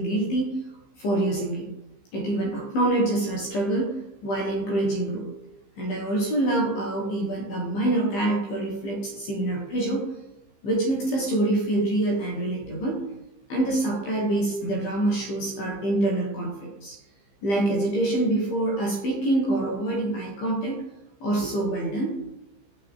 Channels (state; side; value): late; right; 15 ms